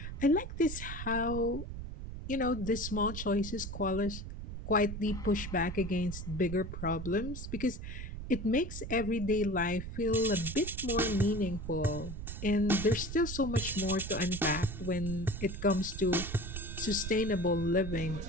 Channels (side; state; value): right; noise; rumble, 7 dB below the sound